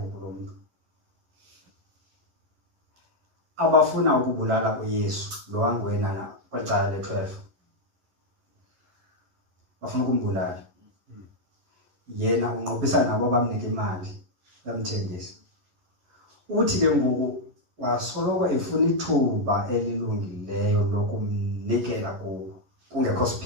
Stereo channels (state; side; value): late; left; 10 ms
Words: lo muntu abafuna ukubulala uYesu lo wangwena kwicala le-12. Bafuna ukumbulala. Yena unqophisana nabo bamnika imali bamthengisa. Uthi ke ngoku wasoloko efuna ithuba elilungileyo lokumnikela kubo kungekho